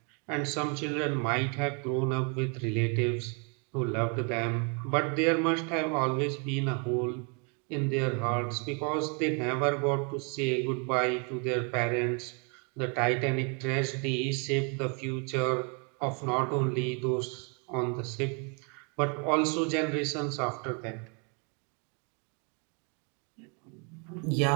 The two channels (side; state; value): left; quieter; 36.1 dB